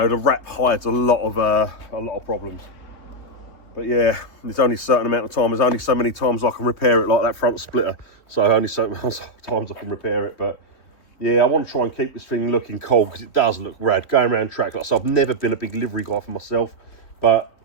the wrap hides a lot of problems. But yeah, there's only a certain amount of time. There's only so many times I can repair it, like that front splitter. So only so many times I can repair it. But yeah, I want to try and keep this thing looking cool, because it does look rad. Going around track, like I said, I've never been a big livery guy for myself. But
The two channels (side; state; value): right; late; 3.3 ms